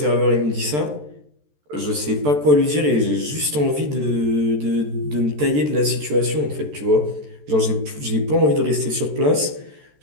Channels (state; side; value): late; left; 14 ms